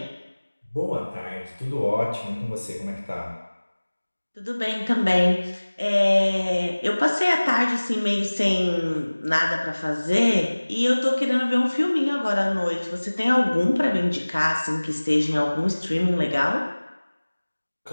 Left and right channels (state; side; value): inverted; both; correlation -1.00